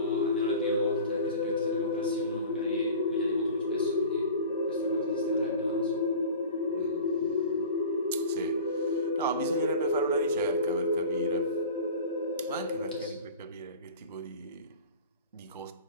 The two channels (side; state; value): both; inverted; correlation -0.38